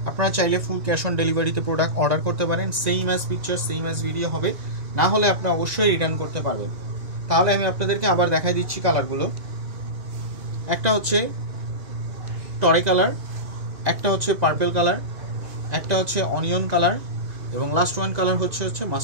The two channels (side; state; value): left; late; 1.9 ms